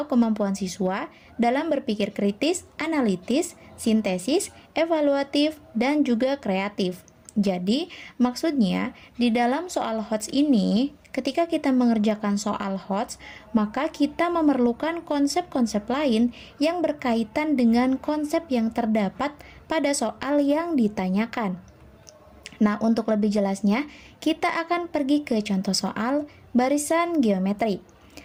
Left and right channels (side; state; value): both; identical; correlation 1.00